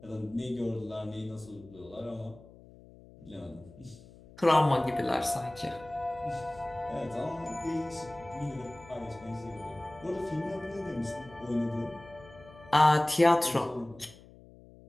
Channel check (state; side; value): noise; left; hum, 21 dB below the sound